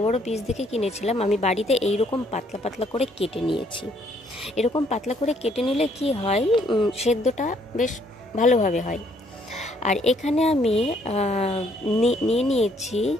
पिस देखे किनेछिलाम। आमी बाड़ीते एई रकम पातला पातला करे केटे नियेछि। एरकम पातला करे केटे निले कि हय सेद्धटा बेश भालोभावे हय। और एखाने आमी निये नियेछि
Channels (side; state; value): both; normal; correlation 0.67